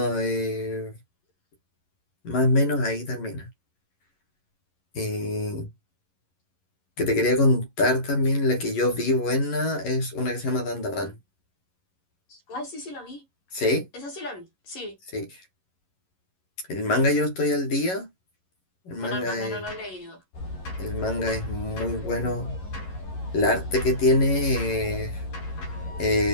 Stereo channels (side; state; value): right; late; 11 ms